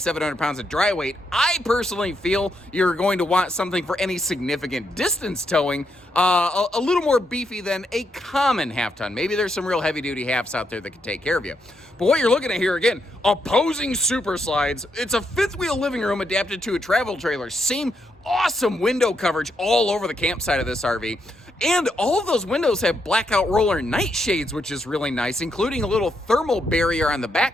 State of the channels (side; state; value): both; normal; correlation 0.80